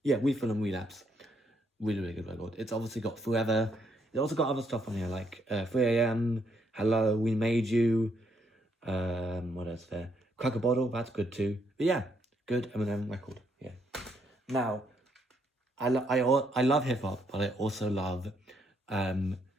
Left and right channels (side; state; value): both; normal; correlation 0.74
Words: Yeah, Refill and Relapse. Really, really good record. It's obviously got Forever. It's also got other stuff on here, like 3 AM, Hello, We Made You, what else there? Crack a Bottle, that's good too. But yeah, good Eminem record, yeah. Now, I love hip hop, but I also love kind